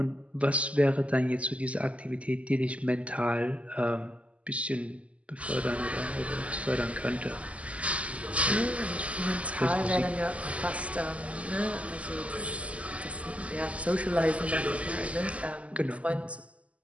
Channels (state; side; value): late; left; 0.065 ms